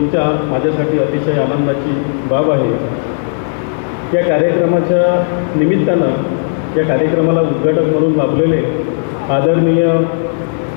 माझ्यासाठी अतिशय आनंदाची बाब आहे। या कार्यक्रमाच्या निमित्तानं या कार्यक्रमाला उद्घाटक म्हणून लाभलेले आदरणीय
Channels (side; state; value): right; silent; digital silence